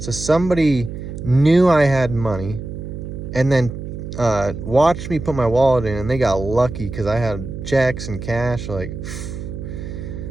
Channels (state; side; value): noise; right; hum, 8 dB below the sound